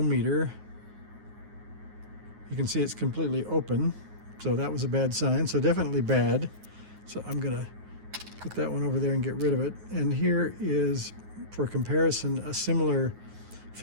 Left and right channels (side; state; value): left; late; 9.5 ms